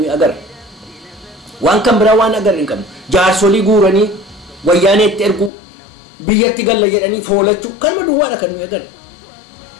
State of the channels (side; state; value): right; drops out; at 5.5 s